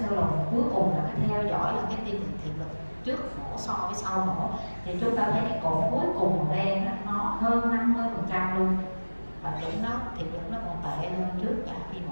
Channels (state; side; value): inverted; both; correlation -1.00